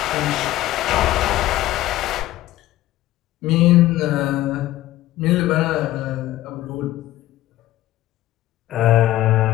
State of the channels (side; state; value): right; quieter; 15.1 dB